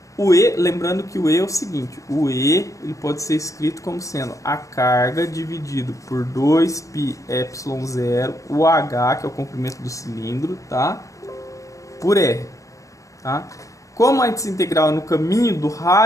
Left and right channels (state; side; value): late; right; 0.16 ms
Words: o E, lembrando que o E é o seguinte, o E ele pode ser escrito como sendo a carga dividido por 2πε0, o H, que é o comprimento do cilindro, tá? Por R, tá? Como a integral é no caminho do